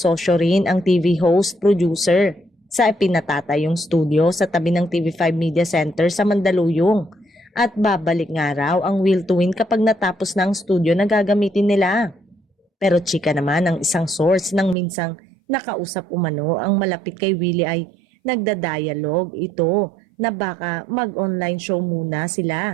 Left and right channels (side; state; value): left; drops out; at 14.8 s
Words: rin ang TV host producer sa pinatatayong studio sa tabi ng TV5 Media Center sa Mandaluyong. At babalik nga raw ang Will to Win kapag natapos na ang studio na gagamitin nila. Pero chika naman ang isang source nang minsang nakausap umano ang malapit kay Willie ay nagda-dialogue ito na baka mag-online show muna